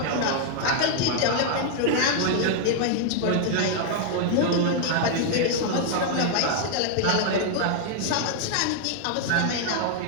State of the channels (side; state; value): both; different; correlation 0.00